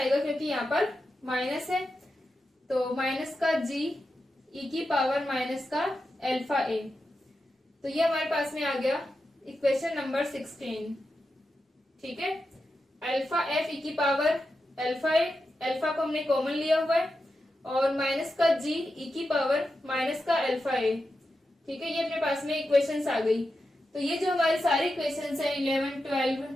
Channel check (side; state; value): both; normal; correlation 0.89